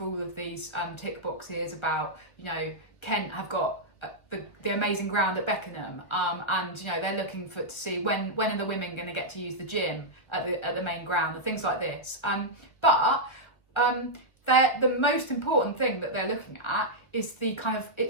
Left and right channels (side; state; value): right; late; 1.2 ms